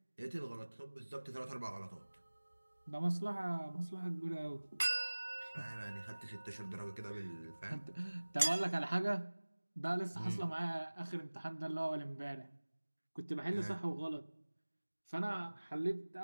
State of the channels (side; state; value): both; inverted; correlation -1.00